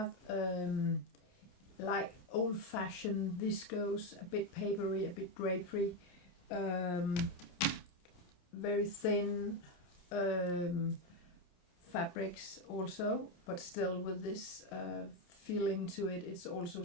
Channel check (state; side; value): late; right; 28 ms